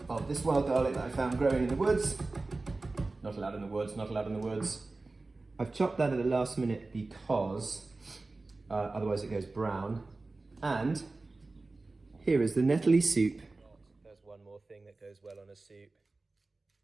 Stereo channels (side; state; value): left; quieter; 3.4 dB